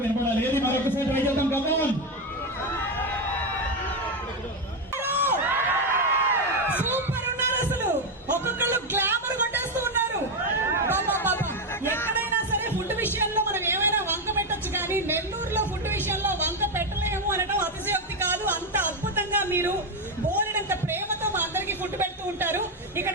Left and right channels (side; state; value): both; normal; correlation 0.09